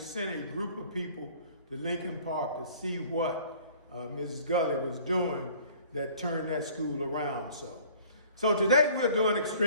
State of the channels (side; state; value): both; inverted; correlation -0.52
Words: a group of people to Lincoln Park to see what Mrs. Gully was doing that turned that school around. So today we're doing